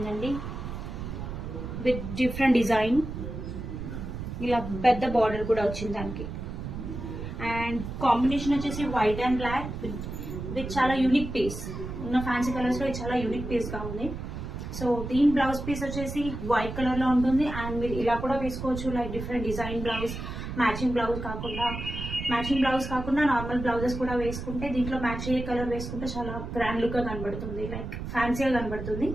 విత్ డిఫరెంట్ డిజైన్. ఇలా పెద్ద బార్డర్ కూడా వచ్చింది దానికి. అండ్ కాంబినేషన్ వచ్చేసి వైట్ అండ్ బ్లాక్ విత్ చాలా యూనిక్ పీస్. ఉన్న ఫ్యాన్సీ కలర్స్ లో ఇది చాలా యూనిక్ పీస్ గా ఉంది. సో దీని బ్లౌజ్ పీస్ వచ్చేసి వైట్ కలర్ లో ఉంటుంది. అండ్ మీరు ఇలా కూడా వేసుకోవచ్చు, like different design blouse, matching blouse కాకుండా నార్మల్ బ్లౌజెస్ కూడా వేసుకుంటే, దీంట్లో మ్యాచ్ అయ్యే కలర్ వేసుకుంటే చాలా గ్రాండ్ లుక్ గా కనబడుతుంది, లైక్ ఫ్యాన్సీగా కనబడుతుంది.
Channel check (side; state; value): right; noise; rumble, 7 dB below the sound